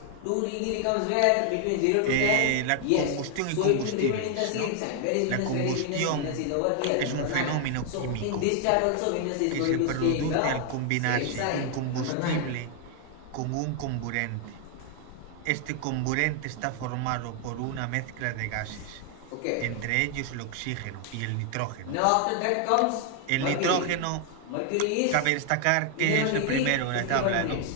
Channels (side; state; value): both; different; correlation 0.00